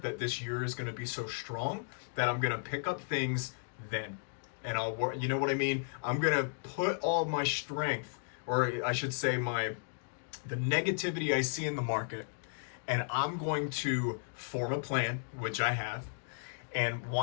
that this year is going to be so strong that I'm going to pick up things then. And I'll, you know what I mean? I'm going to put all my strength, or I should say the negativity I see in the market, and I'm going to form a plan, which I have. And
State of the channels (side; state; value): right; silent; digital silence